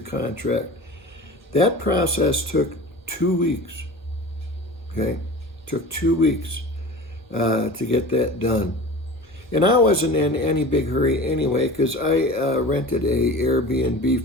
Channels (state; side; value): normal; both; correlation 0.36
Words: That process took 2 weeks. Okay, took 2 weeks to get that done. And I wasn't in any big hurry anyway, because I rented a Airbnb